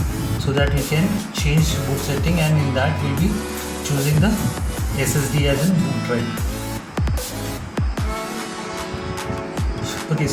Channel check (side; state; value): both; identical; correlation 1.00